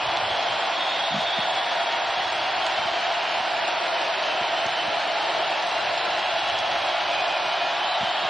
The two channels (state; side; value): normal; both; correlation 0.90